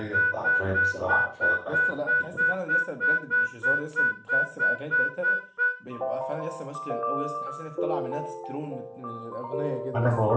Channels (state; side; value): identical; both; correlation 1.00